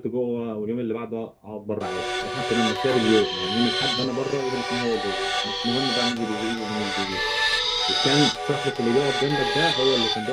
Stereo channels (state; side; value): identical; both; correlation 1.00